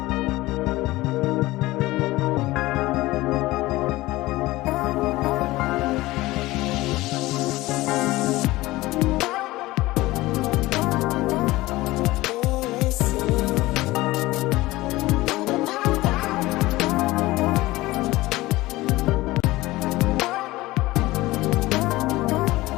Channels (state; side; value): quieter; right; 18.8 dB